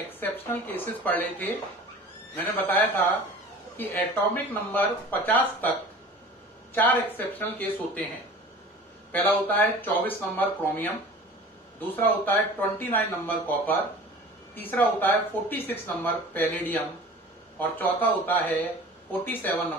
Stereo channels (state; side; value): normal; both; correlation 0.42